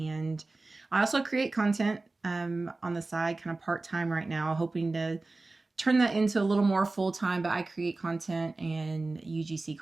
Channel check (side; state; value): left; quieter; 3.3 dB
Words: I also create content on the side, kind of part-time right now, hoping to turn that into a little more full-time, but I create content and UGC